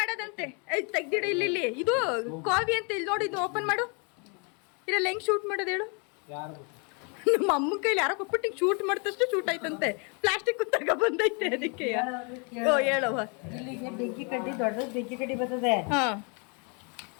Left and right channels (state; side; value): quieter; right; 35.2 dB